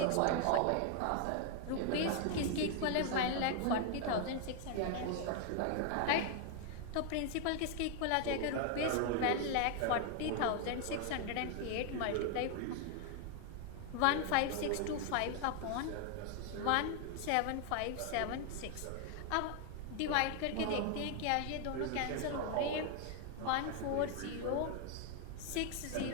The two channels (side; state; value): both; different; correlation 0.00